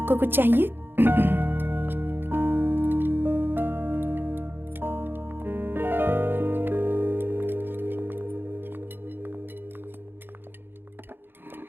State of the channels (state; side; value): late; left; 0.10 ms